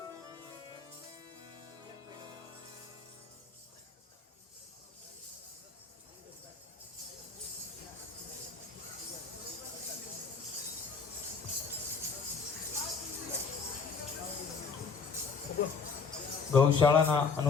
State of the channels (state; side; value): quieter; right; 5.2 dB